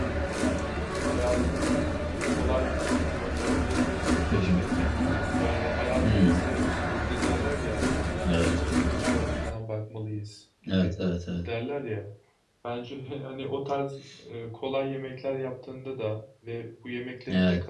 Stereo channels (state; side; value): identical; both; correlation 1.00